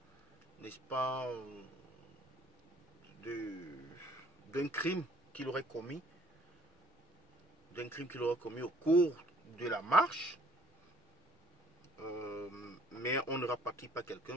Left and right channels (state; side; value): normal; both; correlation 0.57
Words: n'est-ce pas, d'un crime qu'il aurait commis, au cours de la marche. Mais on ne rapatrie pas